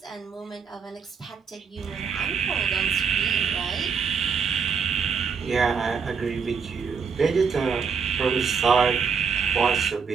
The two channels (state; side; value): quieter; left; 6.0 dB